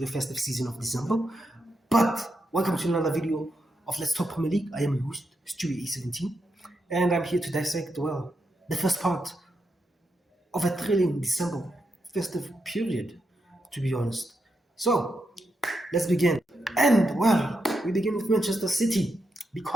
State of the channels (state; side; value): normal; both; correlation 0.84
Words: festive season of December. But welcome to another video of Let's Talk Premier League. I am your host, Stewie A17, and I'm here to dissect, well, the first part of a thrilling December festive period, to be honest. So, let's begin. And, well, we begin with Manchester City,